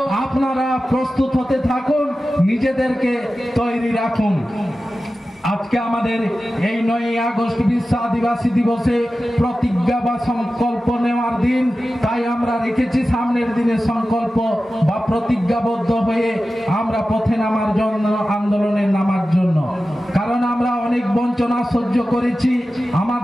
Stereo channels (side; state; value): both; normal; correlation 0.94